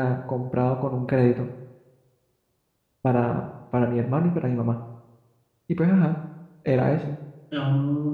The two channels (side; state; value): both; identical; correlation 1.00